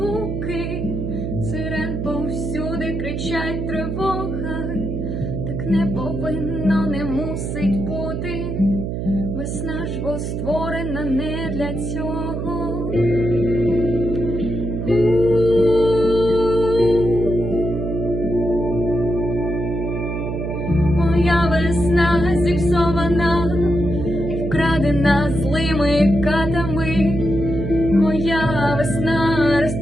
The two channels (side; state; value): right; noise; hum, 3 dB below the sound